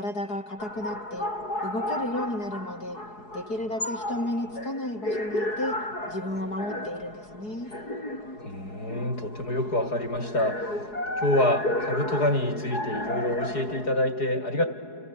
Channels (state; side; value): late; right; 4.7 ms